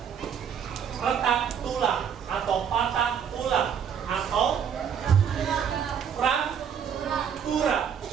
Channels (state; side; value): quieter; left; 7.9 dB